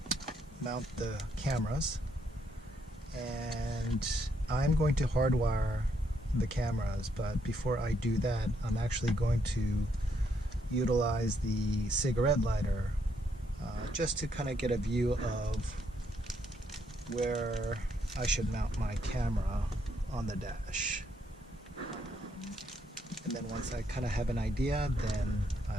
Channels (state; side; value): normal; both; correlation 0.74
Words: mount the cameras, and I'm going to hardwire the cameras, but before I do that, I'm actually going to utilize the cigarette lighter just to kind of get a view of where I should mount my camera on the dash. And then once I kind of have an idea, then